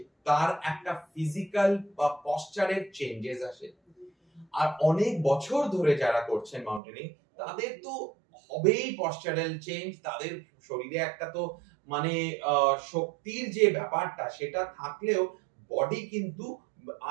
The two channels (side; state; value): left; drops out; at 6.8 s